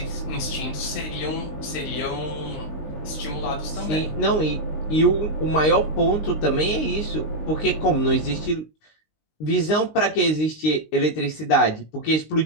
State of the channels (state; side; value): late; right; 19 ms